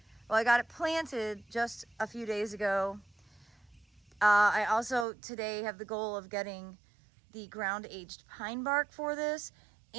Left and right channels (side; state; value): left; drops out; at 5.1 s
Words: Well, I got it planted just a few days ago. I also today have the goal of getting the ground aged pine bark for this,